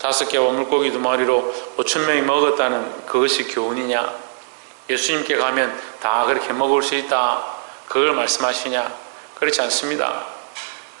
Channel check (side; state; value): left; silent; digital silence